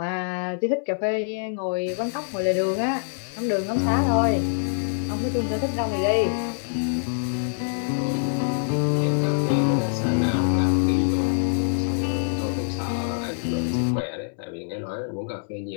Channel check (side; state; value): right; silent; 62 dB below the other